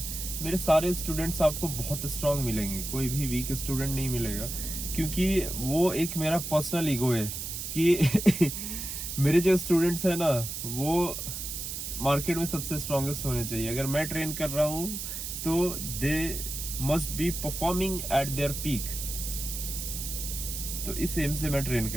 मेरे सारे स्टूडेंट्स आपको बहुत स्ट्रांग मिलेंगे, कोई भी वीक स्टूडेंट नहीं मिलेगा। क्योंकि वो एक मेरा पर्सनल ईगो है कि मेरे जो स्टूडेंट्स हैं ना, वो मार्केट में सबसे स्ट्रांगेस्ट होने चाहिए। अगर मैं ट्रेन कर रहा हूँ तो they must be performing at there peak. तो इस एम से मैं ट्रेन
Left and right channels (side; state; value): right; noise; hiss, 5 dB below the sound